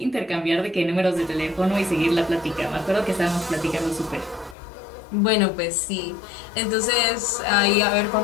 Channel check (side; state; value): right; drops out; at 4.5 s